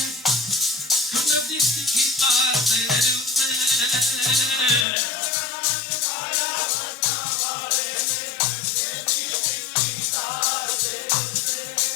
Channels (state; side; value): drops out; right; at 4.9 s